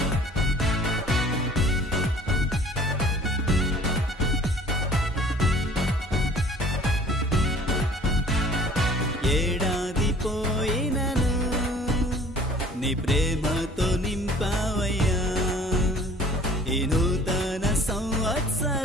ఏడాది పోయినను నీ ప్రేమతో నింపావయ్యా. ఈ నూతన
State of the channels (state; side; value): normal; both; correlation 0.50